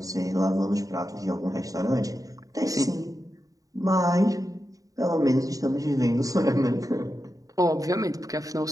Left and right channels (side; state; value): left; late; 0.17 ms